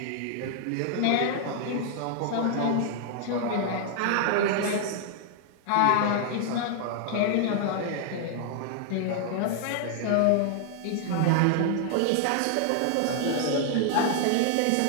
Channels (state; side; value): different; both; correlation 0.00